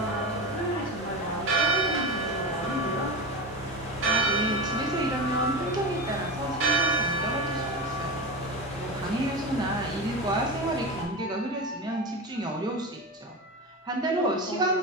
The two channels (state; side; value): normal; both; correlation 0.22